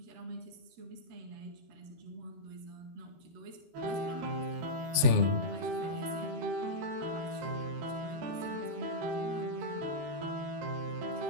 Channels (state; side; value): late; left; 13 ms